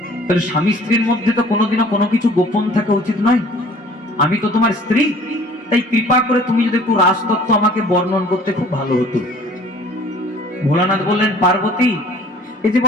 তাহলে স্বামী স্ত্রীর মধ্যে তো কোনোদিনও কোনো কিছু গোপন থাকা উচিত নয়। আমি তো তোমার স্ত্রী, তাই কৃপা করে তুমি যদি একটু রাসতত্ত্ব আমাকে বর্ণন করতে খুব ভালো হতো। ভোলানাথ বললেন, পার্বতী এই যে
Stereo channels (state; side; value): normal; both; correlation 0.52